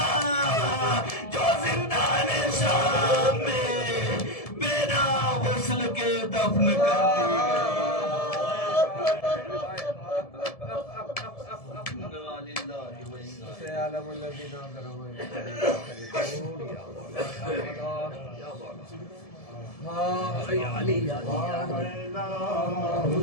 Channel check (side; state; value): right; late; 1.7 ms